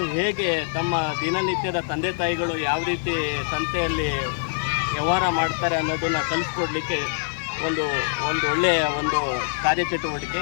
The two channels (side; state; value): right; silent; 62 dB below the other